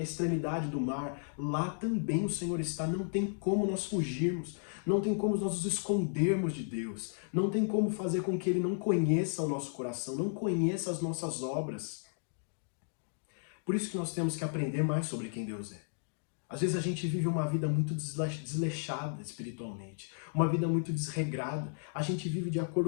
extremidade do mar, lá também o Senhor está. Não tem como nós fugirmos. Não tem como nós nos escondermos de Deus. Não tem como fazer com que Ele não conheça o nosso coração, não conheça as nossas obras. Por isso que nós temos que aprender mais sobre quem Deus é. Às vezes a gente vive uma vida muito desleixada espiritualmente, uma vida muito desregrada. A gente vive de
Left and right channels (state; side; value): silent; right; digital silence